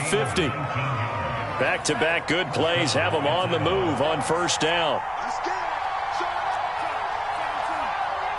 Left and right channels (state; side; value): identical; both; correlation 1.00